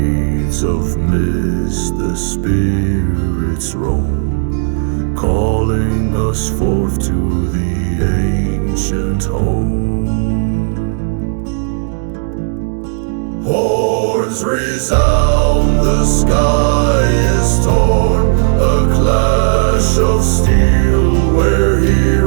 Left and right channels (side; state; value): left; silent; 67 dB below the other